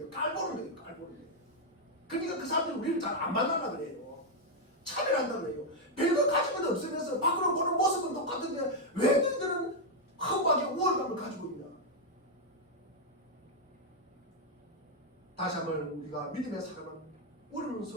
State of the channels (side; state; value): both; normal; correlation -0.01